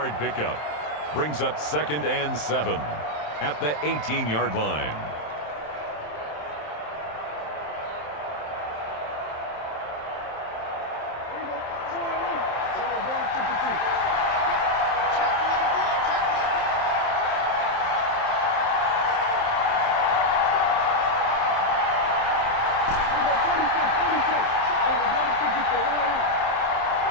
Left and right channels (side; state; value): right; late; 27 ms